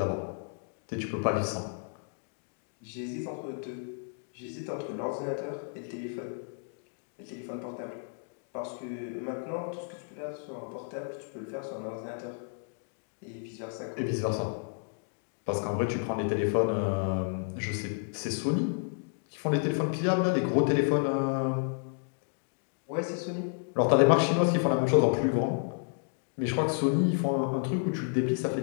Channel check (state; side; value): silent; right; 57 dB below the other